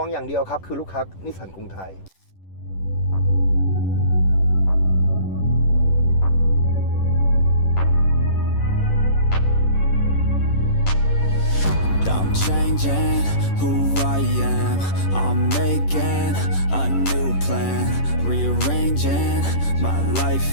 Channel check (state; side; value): late; right; 11 ms